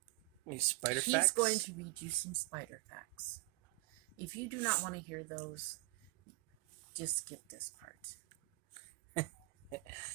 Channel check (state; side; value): quieter; left; 24.6 dB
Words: Spider He's facts? going to read you some spider facts. If you do not want to hear those, just skip this part.